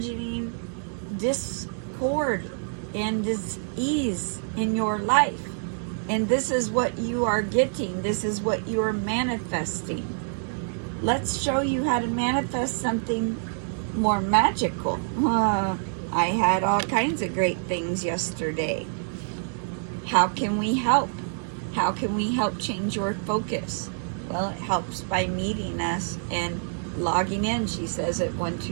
discord and dis-ease in your life. And this is what you are getting. This is what you are manifesting. Let's show you how to manifest something more magical. I had all kinds of great things yesterday. How can we help? How can we help change your focus? Well, it helps by meeting us and logging in, she says, at 1,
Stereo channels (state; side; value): silent; left; digital silence